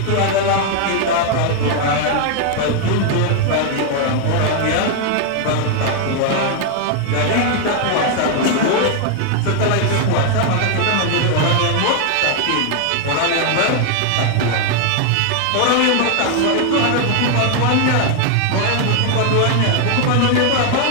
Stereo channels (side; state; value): both; different; correlation 0.00